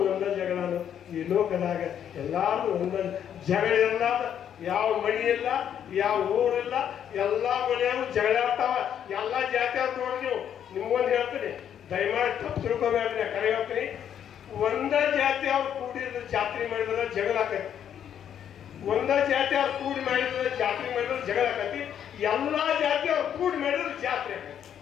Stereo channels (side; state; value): right; quieter; 9.3 dB